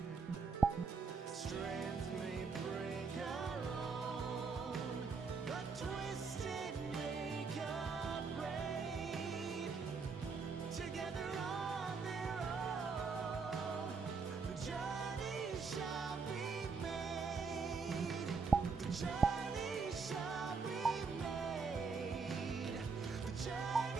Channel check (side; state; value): left; quieter; 5.0 dB